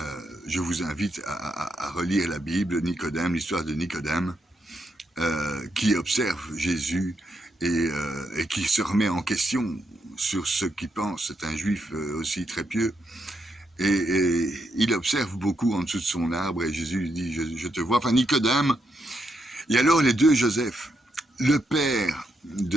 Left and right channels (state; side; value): normal; both; correlation 0.80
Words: Je vous invite à relire la Bible, Nicodème, l'histoire de Nicodème, qui observe Jésus et qui se remet en question sur ce qu'il pense. C'est un juif aussi très pieux. Et il observe beaucoup en dessous de son arbre et Jésus lui dit, je te vois. Enfin, Nicodème, et alors les deux Joseph, le père